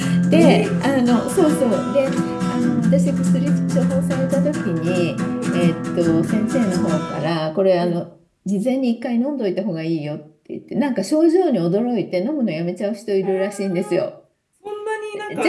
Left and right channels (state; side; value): identical; both; correlation 1.00